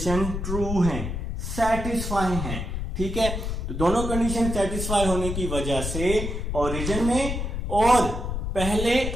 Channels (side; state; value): left; noise; rumble, 3 dB below the sound